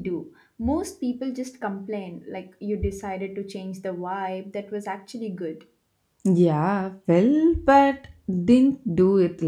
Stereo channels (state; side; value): identical; both; correlation 1.00